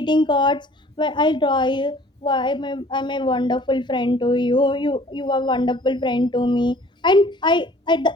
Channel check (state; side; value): normal; both; correlation 0.52